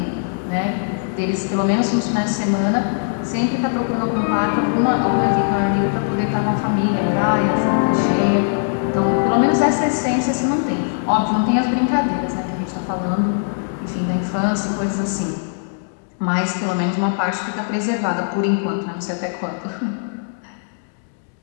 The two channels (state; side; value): silent; right; digital silence